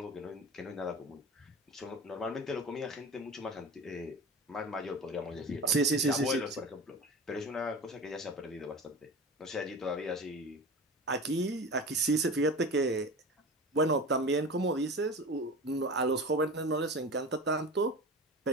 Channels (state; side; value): normal; both; correlation 0.31